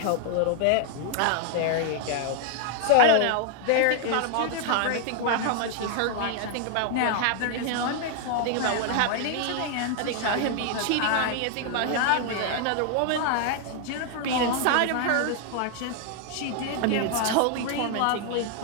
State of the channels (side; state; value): both; different; correlation 0.00